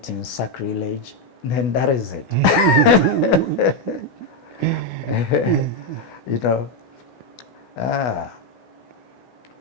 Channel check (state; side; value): late; right; 16 ms